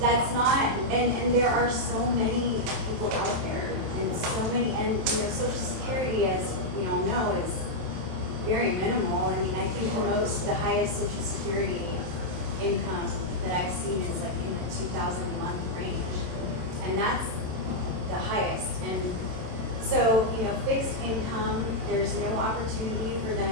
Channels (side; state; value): left; late; 27 ms